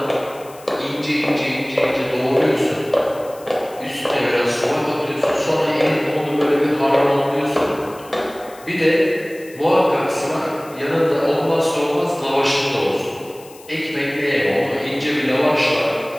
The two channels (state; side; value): noise; left; hiss, 22 dB below the sound